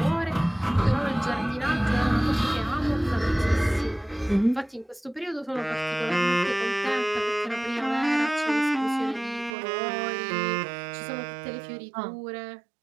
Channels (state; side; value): drops out; left; at 9.5 s